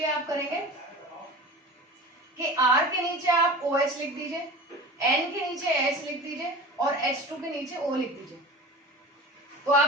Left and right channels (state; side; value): normal; both; correlation 0.35